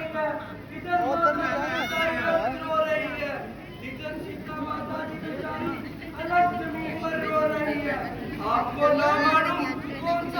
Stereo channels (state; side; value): identical; both; correlation 1.00